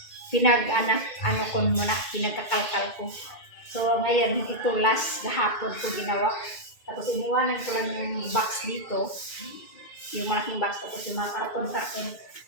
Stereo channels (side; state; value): right; late; 2.1 ms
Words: ano ko muna, pinagkakalkal ko. So ngayon ito last gahapon ko ginawa. Tapos iniwanan ko lang yung box dito. Yung malaking box, tapos yung mga karton.